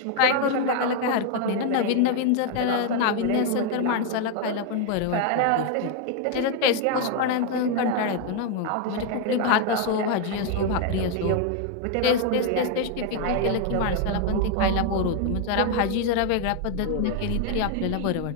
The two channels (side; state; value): both; different; correlation 0.01